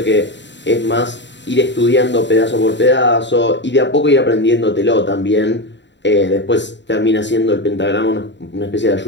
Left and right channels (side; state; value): right; late; 0.52 ms